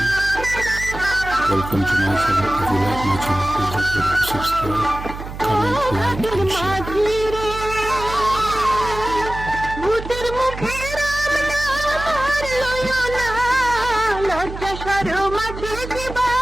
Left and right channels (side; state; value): right; noise; hum, 10 dB below the sound